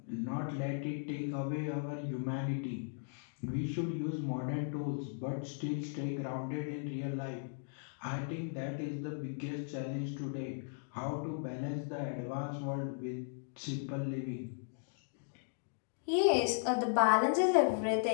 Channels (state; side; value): silent; right; digital silence